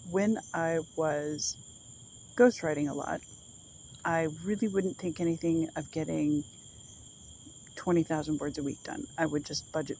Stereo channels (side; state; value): both; identical; correlation 1.00